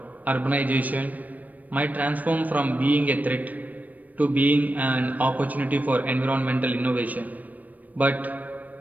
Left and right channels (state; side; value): late; left; 0.077 ms